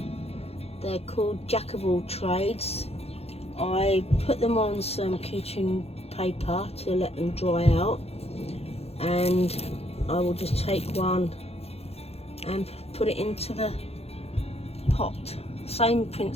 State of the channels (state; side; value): late; right; 0.29 ms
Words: They're called Jack of All Trades. I put them on some kitchen paper to let them dry out, and I will just take one and put it into the pot. Same